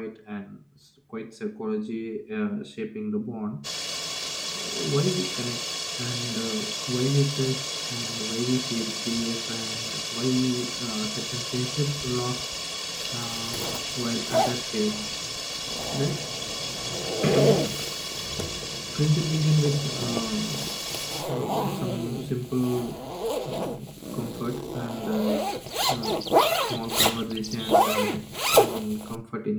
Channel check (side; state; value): both; identical; correlation 1.00